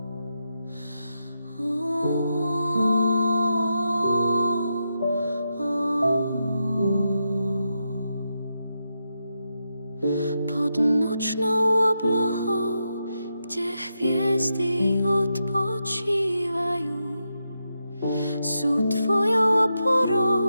nočnou oblohou, kde hviezdy odpočívajú, sú tvojou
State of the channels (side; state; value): both; inverted; correlation -0.86